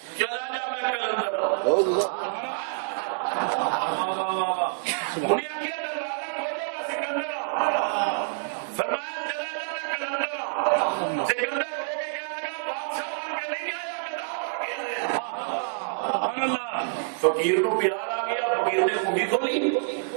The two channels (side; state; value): left; silent; 60 dB below the other